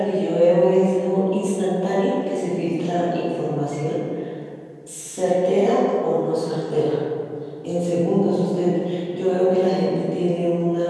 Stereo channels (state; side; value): identical; both; correlation 1.00